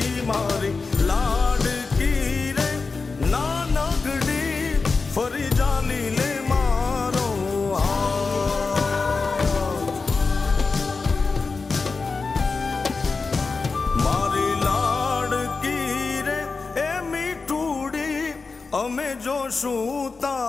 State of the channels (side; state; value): right; quieter; 4.3 dB